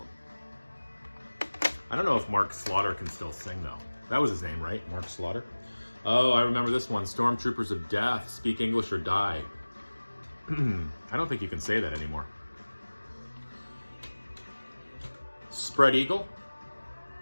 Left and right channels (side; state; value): both; inverted; correlation -1.00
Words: I don't know if Mark Slaughter can still sing though. That was his name, right? Mark Slaughter? Oh, I remember this one. Stormtroopers of Death, Speak English or Die. I don't think you can say that anymore. Spread Eagle.